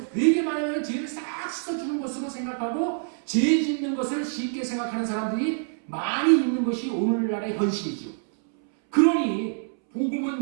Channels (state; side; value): silent; left; 61 dB below the other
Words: 되게 많은 죄를 싹 씻어주는 것으로 생각하고 죄 짓는 것을 쉽게 생각하는 사람들이 많이 있는 것이 오늘날의 현실이죠. 그러니